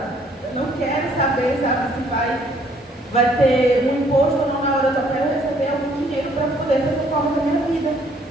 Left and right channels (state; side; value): normal; both; correlation 0.63